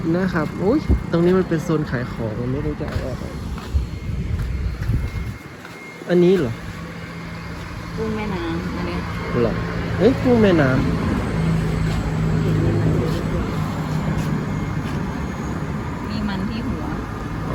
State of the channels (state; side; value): identical; both; correlation 1.00